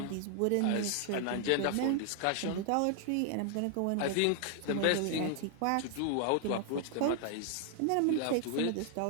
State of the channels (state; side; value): different; both; correlation 0.00